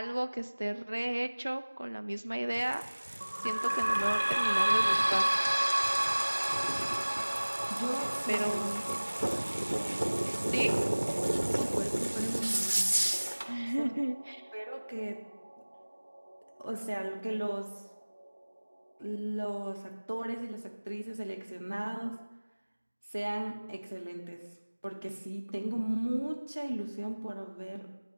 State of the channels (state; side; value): inverted; both; correlation -1.00